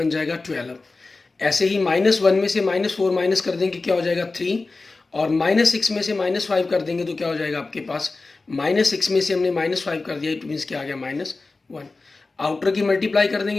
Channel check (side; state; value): right; quieter; 3.6 dB